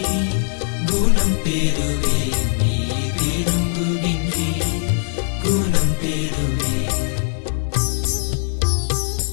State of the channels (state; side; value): silent; right; 63 dB below the other